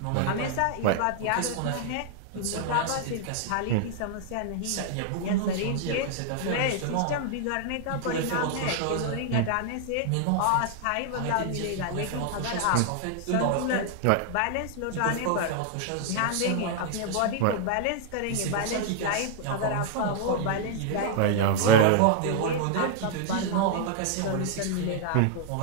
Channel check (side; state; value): both; different; correlation 0.00